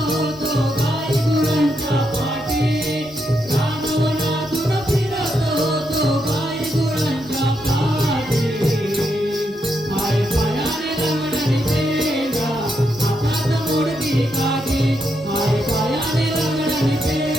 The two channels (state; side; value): normal; both; correlation 0.81